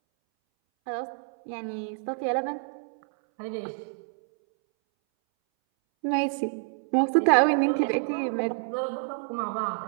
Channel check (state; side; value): silent; left; 60 dB below the other